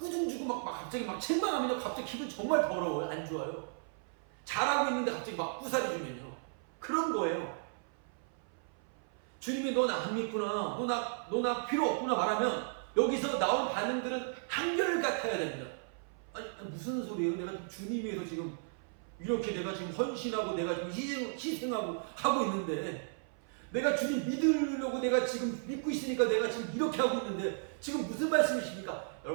주고 막 갑자기 막 책망하면요, 갑자기 기분 정말 더러워요. 안 좋아요. 잘하고 있는데 갑자기 막 부사리 주면요, 그런 거예요. 주님이 너 나 안 믿구나, 너 나 필요 없구나 말하면 여기서 나온 반응들은 한결같아야 됩니다. 아니 무슨 소리예요? 내가 주님 위해서 지금 이렇게 내가 지금 헌신하고 내가 지금 희생하고 하고 있는데, 내가 주님 믿으려고 내가 지금 믿고 있으니까 내가 지금 이렇게 하고 있는데 지금 무슨 말씀이십니까?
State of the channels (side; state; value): left; silent; 55 dB below the other